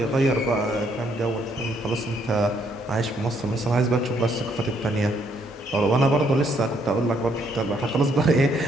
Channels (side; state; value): both; normal; correlation 0.70